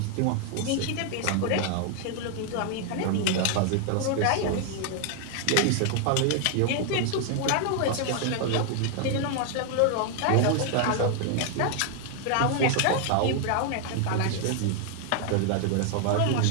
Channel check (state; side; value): different; both; correlation 0.00